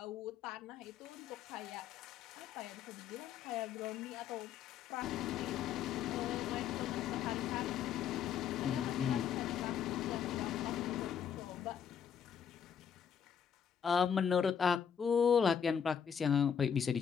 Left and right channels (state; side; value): quieter; right; 7.8 dB